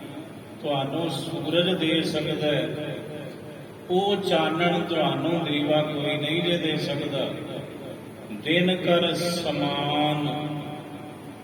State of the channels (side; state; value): both; identical; correlation 1.00